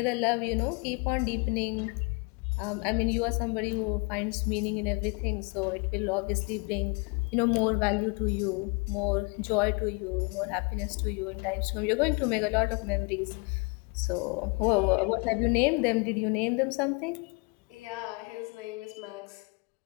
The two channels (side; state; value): right; quieter; 31.5 dB